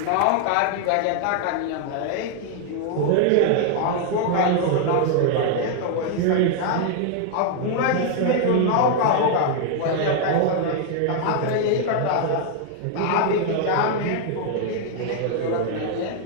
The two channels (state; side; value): different; both; correlation 0.00